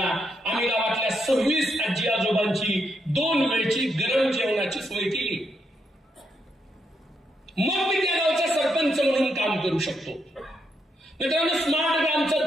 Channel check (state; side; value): normal; both; correlation 0.79